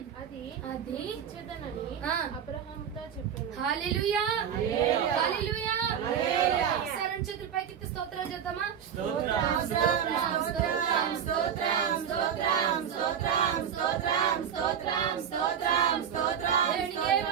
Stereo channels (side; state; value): left; quieter; 8.3 dB